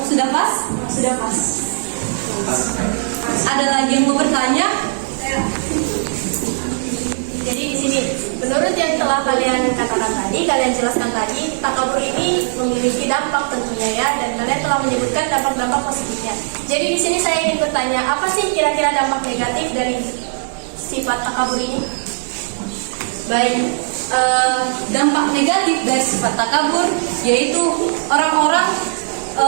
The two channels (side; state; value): left; silent; 67 dB below the other